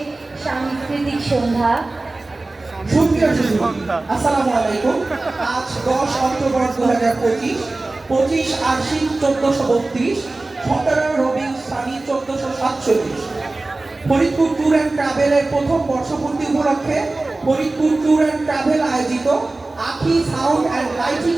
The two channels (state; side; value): quieter; left; 3.1 dB